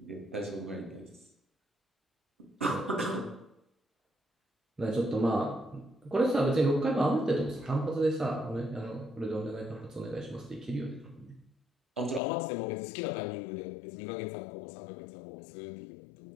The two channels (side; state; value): right; drops out; at 12.2 s